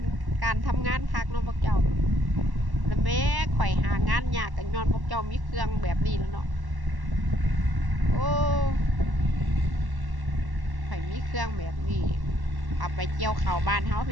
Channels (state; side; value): late; left; 1.1 ms